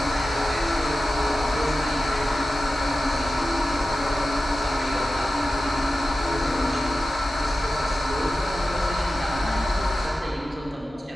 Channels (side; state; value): both; normal; correlation 0.94